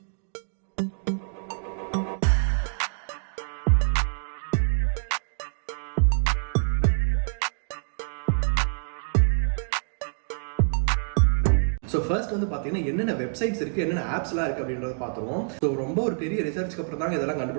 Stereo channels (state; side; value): silent; left; digital silence